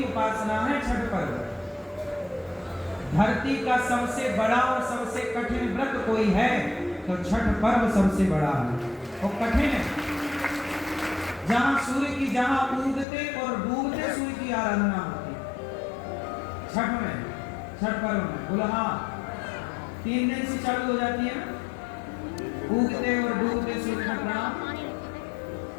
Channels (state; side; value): drops out; right; at 13.1 s